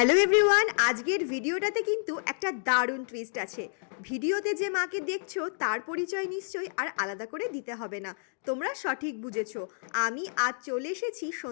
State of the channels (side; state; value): right; silent; digital silence